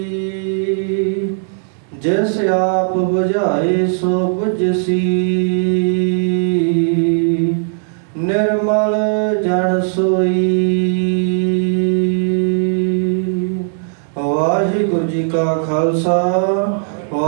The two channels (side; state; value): left; silent; digital silence